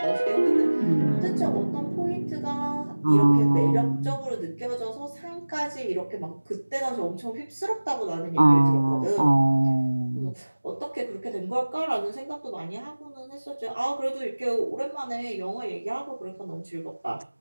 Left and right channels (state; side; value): inverted; both; correlation -1.00